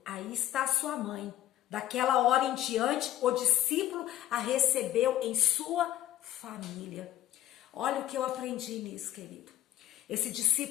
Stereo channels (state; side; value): quieter; right; 12.9 dB